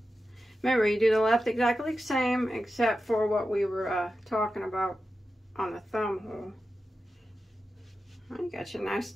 remember, you do the left exactly the same except for what we were talking about on the thumb hole. Well, you got your nice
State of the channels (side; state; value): both; normal; correlation 0.92